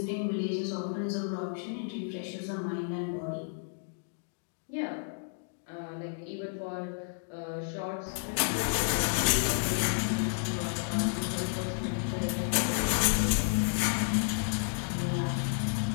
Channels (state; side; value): silent; right; digital silence